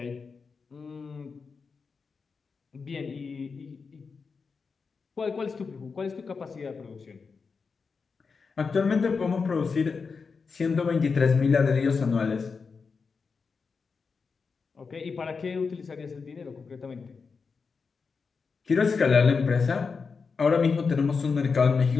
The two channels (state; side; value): quieter; right; 5.1 dB